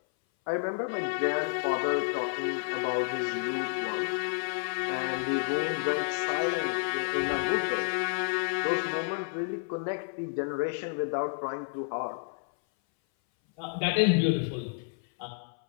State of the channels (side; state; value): right; silent; 58 dB below the other